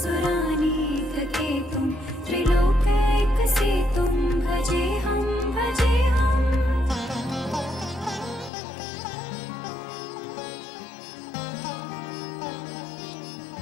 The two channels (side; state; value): right; drops out; at 8.5 s